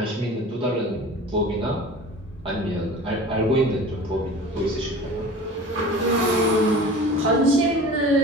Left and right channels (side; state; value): both; normal; correlation 0.39